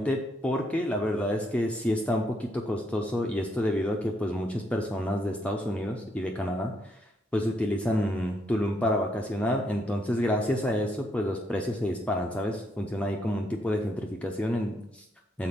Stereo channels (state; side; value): normal; both; correlation 0.75